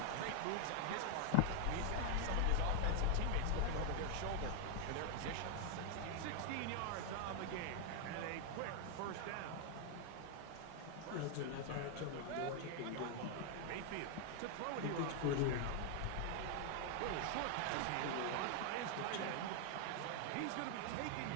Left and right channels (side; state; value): both; different; correlation 0.00